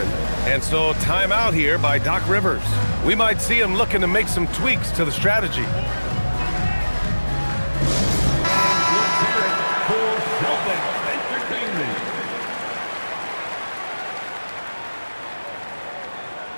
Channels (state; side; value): inverted; both; correlation -1.00